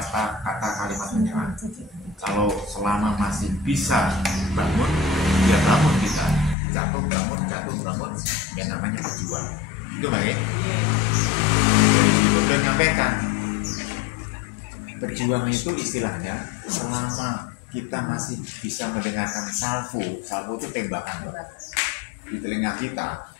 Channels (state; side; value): drops out; right; at 6.6 s